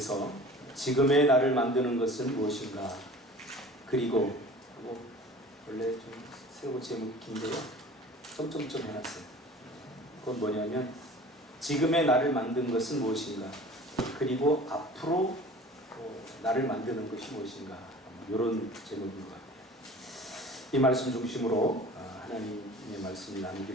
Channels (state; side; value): normal; both; correlation 0.43